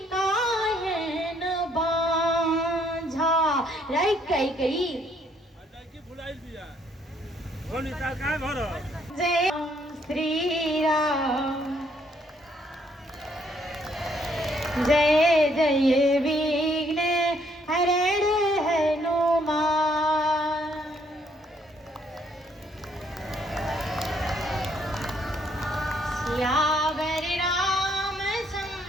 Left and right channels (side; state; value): both; normal; correlation 0.68